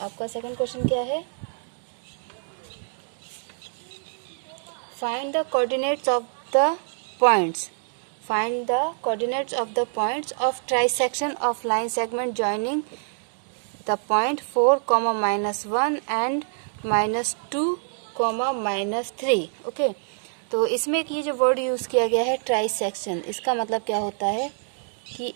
आपका सेकंड क्वेश्चन क्या है? Find the coordinates of the points. Find the coordinates of the points of trisection of line segment joining the point 4, -1 and -2, -3. Okay, तो इसमें एक ये जो वर्ड यूज़ किया गया है ट्राइसेक्शन, इसका मतलब क्या होता है कि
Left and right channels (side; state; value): left; silent; digital silence